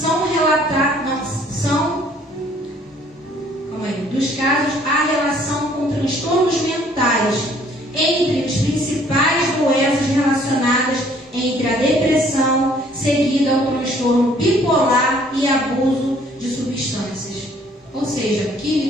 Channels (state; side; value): normal; both; correlation 0.60